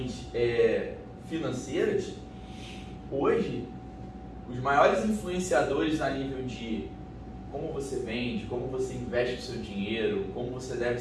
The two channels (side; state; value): both; identical; correlation 1.00